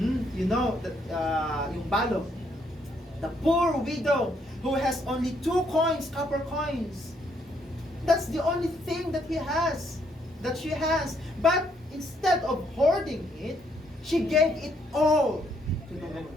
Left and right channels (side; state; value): both; normal; correlation 0.71